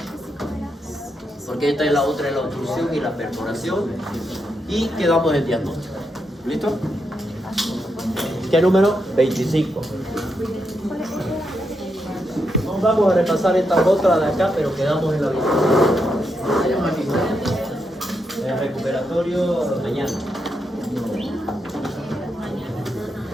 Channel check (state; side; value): normal; both; correlation 0.83